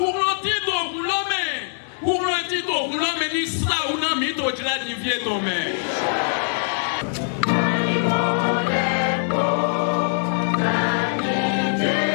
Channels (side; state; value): right; silent; 64 dB below the other